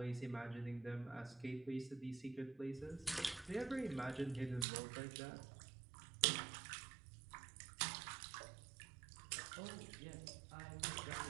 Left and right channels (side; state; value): left; drops out; at 4.7 s